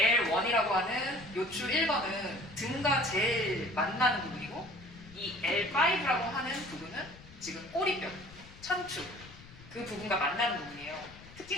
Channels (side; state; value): left; noise; rumble, 20 dB below the sound